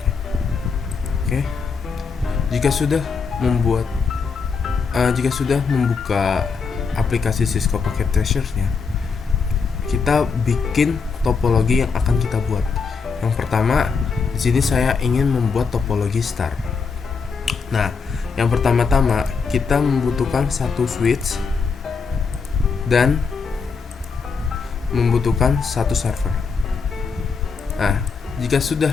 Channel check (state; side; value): quieter; right; 5.2 dB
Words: Oke, jika sudah membuka aplikasi Cisco Pocket Treasure-nya, kita bikin topologi yang akan kita buat. Yang pertama, di sini saya ingin membuat topologi star. Nah, yang pertama-tama kita membutuhkan satu switch dan membutuhkan satu server. Nah, jika sudah